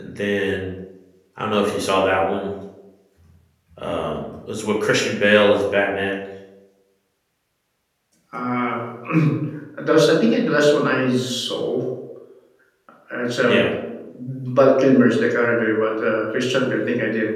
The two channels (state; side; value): identical; both; correlation 1.00